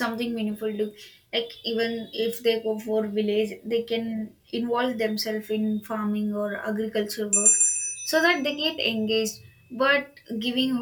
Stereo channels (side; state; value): both; identical; correlation 1.00